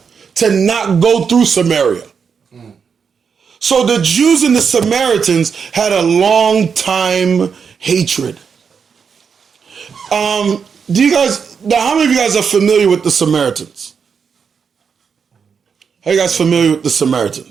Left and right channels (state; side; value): quieter; left; 6.3 dB